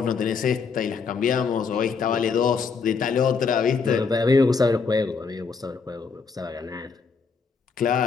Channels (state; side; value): quieter; right; 5.3 dB